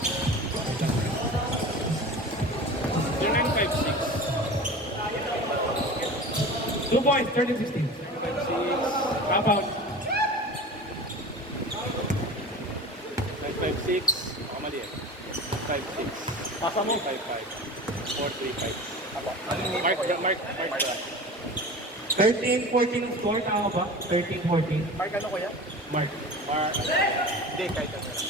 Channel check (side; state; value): both; normal; correlation 0.34